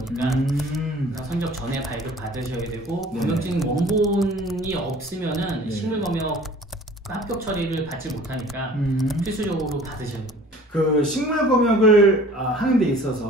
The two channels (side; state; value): both; normal; correlation 0.48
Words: 선적 전에 발급 받으셔야 되고 검역증 원본이 없으면은 식물 검역 합격 처리를 받지 못하니까 필수적으로 받으셔야 돼요. 그 식물 검역을 하는 데